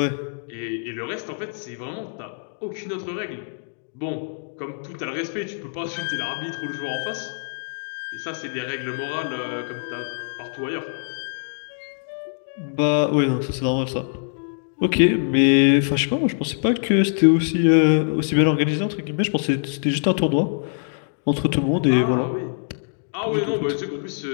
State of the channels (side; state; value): right; silent; 63 dB below the other